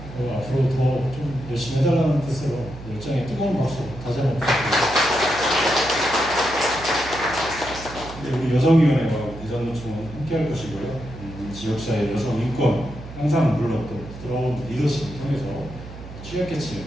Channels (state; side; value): noise; right; hum, 13 dB below the sound